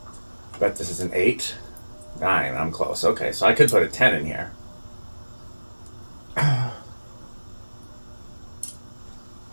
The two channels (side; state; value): both; inverted; correlation -1.00